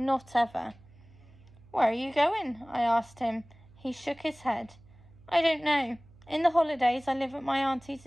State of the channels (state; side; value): noise; right; hum, 25 dB below the sound